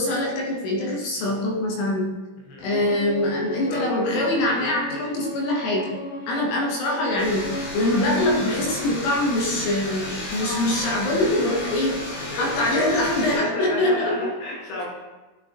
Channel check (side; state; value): right; late; 21 ms